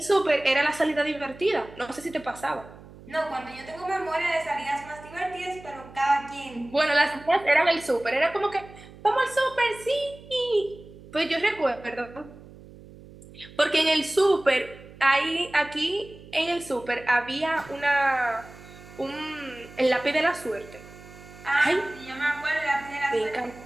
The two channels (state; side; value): noise; right; hum, 19 dB below the sound